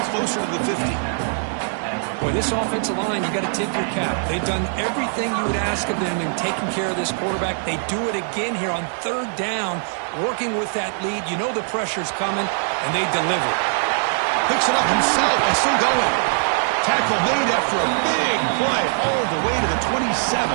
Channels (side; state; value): left; silent; 55 dB below the other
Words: closer to the 50. Boy, this offensive line, you got to tip your cap. They've done everything you would ask of them in taking care of this quarterback. They do it again here on 3rd down, working with that lead. You know the pressure's coming, and they deliver. Picks it up himself and still going. Tackle made after a big play all the way to the